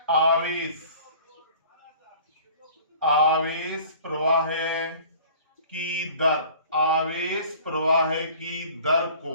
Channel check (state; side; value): inverted; both; correlation -0.47